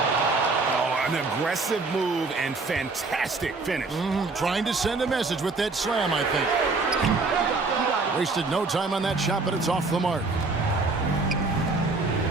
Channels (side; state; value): left; quieter; 3.7 dB